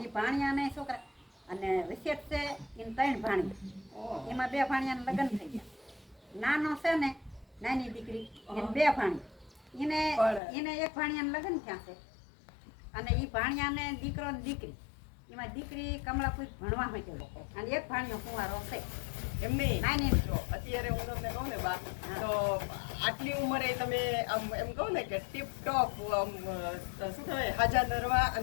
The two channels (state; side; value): drops out; right; at 10.4 s